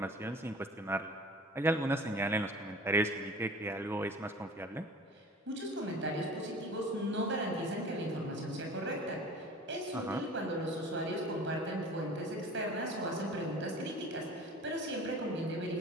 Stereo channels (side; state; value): both; normal; correlation 0.42